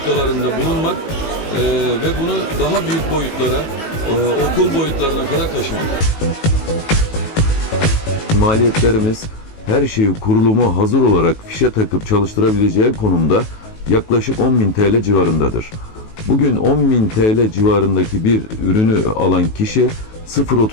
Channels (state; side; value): late; right; 19 ms